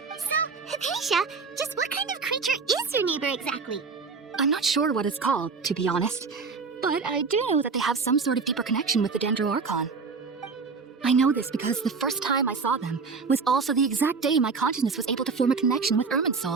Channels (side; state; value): left; quieter; 4.8 dB